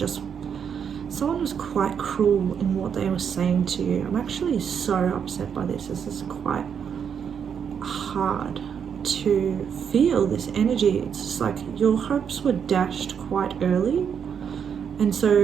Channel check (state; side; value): quieter; left; 7.5 dB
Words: someone was quite cruel in what they were saying to you. I'm actually so upset by this. This is quite hard to feel, this energy. It's just like your hopes were dashed quite early, and